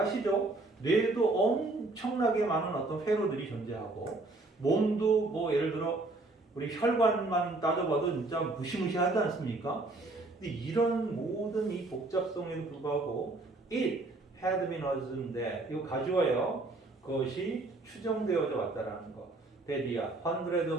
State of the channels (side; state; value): left; quieter; 3.0 dB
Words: 뇌에도 엄청나게 많은 어떤 회로들이 존재하고, 몸도 뭐 예를 들어 우리 혈관만 따져봐도 진짜 무시무시하지 않습니까? 근데 이런 모든 이 복잡성에도 불구하고 it had been assumed that, 이거 가져와요. 그것이 추정되어져 왔다라는 거. that이야, hundreds